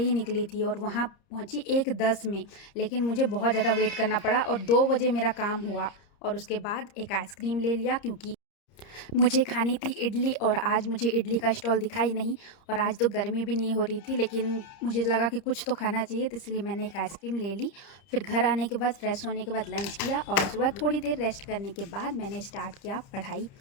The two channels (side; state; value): right; late; 30 ms